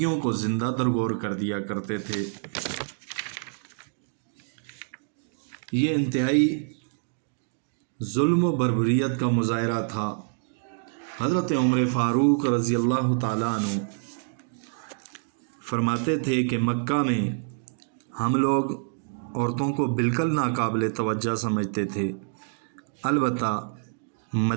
کو زندہ درگور کر دیا کرتے تھے۔ یہ انتہائی ظلم و بربریت کا مظاہرہ تھا۔ حضرت عمر فاروق رضی اللہ تعالیٰ عنہ فرماتے تھے کہ مکہ میں ہم لوگ عورتوں کو بالکل ناقابل توجہ سمجھتے تھے، البتہ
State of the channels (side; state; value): left; silent; digital silence